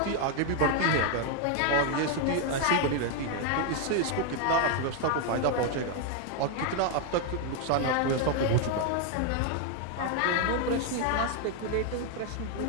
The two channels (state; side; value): different; both; correlation 0.00